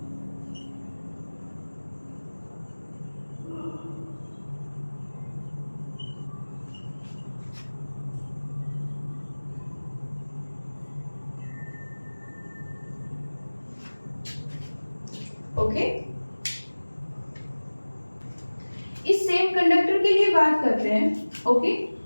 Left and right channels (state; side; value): inverted; both; correlation -1.00